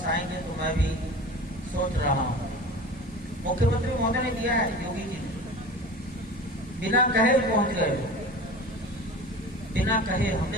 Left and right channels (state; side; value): normal; both; correlation 0.36